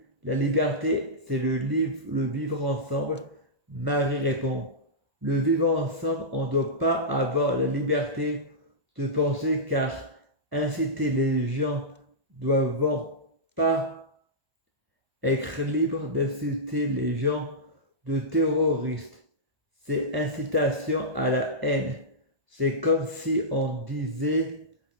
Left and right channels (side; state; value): left; late; 1.5 ms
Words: la liberté c'est le vivre ensemble. Marie répond le vivre ensemble, on ne doit pas avoir la liberté de penser car inciter les gens doivent pas être libres d'inciter les gens de terroristes. C'est incitation à la haine. C'est comme si on disait